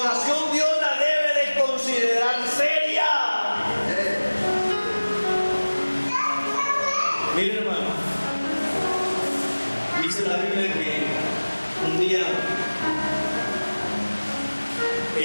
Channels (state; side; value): inverted; both; correlation -1.00